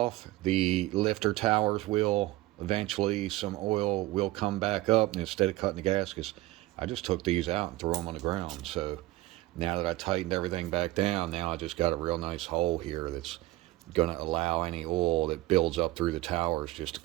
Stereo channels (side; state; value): left; quieter; 18.0 dB